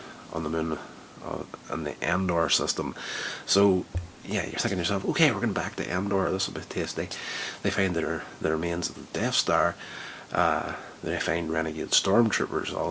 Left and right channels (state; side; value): identical; both; correlation 1.00